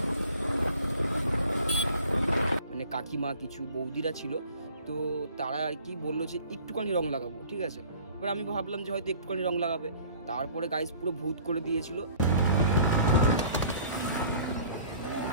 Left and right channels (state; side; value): inverted; both; correlation -0.50